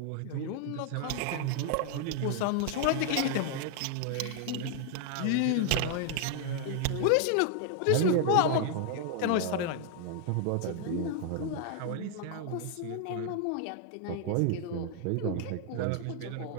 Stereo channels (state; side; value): different; both; correlation 0.00